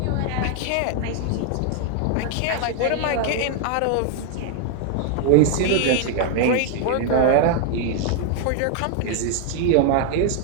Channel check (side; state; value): both; different; correlation 0.00